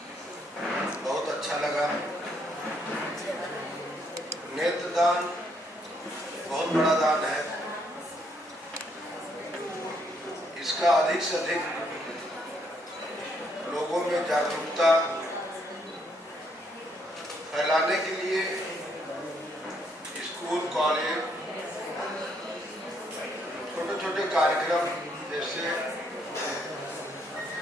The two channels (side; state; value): both; normal; correlation 0.72